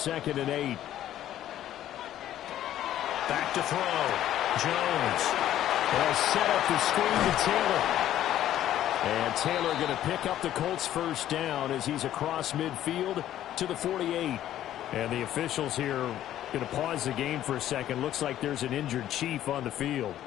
and 8. Back to throw. Jones. They'll set up the screen to Taylor. And Taylor going to pick up the Colts' first down as he's across midfield to the 48. And the officials here going to pause the game for a second. Looks like there's an injured Chief on the field.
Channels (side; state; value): right; quieter; 12.3 dB